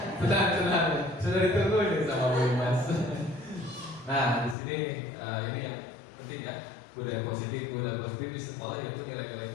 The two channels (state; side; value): drops out; right; at 4.5 s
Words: Tenang. Sudah ditunggu nih sama Bu Mas. Nah, di sini ini yang penting ya. Budaya positif di sekolah yaitu nilai-nilai